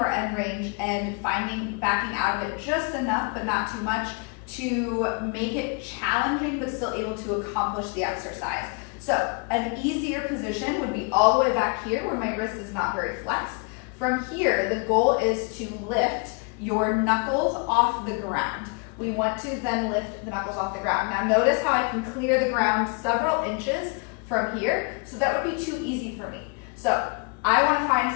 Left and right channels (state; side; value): quieter; right; 34.4 dB